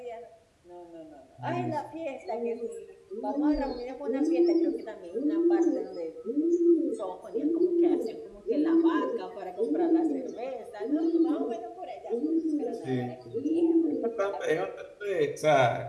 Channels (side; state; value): both; identical; correlation 1.00